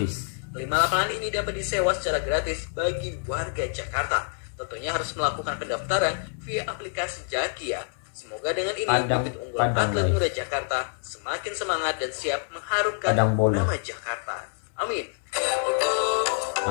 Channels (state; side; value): silent; right; 60 dB below the other